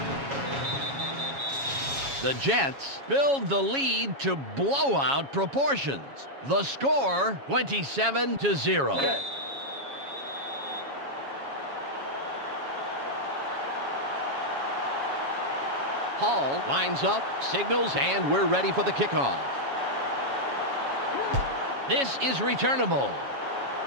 The Jets build the lead to blowout proportions. The score, 27-0. Hall lines up, signals, and we're ready for the kickoff. This is returnable.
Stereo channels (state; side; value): late; left; 7.2 ms